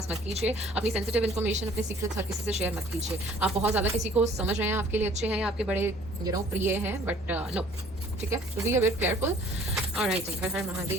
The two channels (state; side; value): normal; both; correlation 0.55